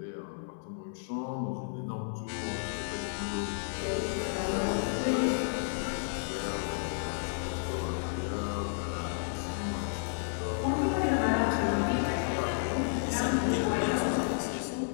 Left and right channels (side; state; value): right; silent; 56 dB below the other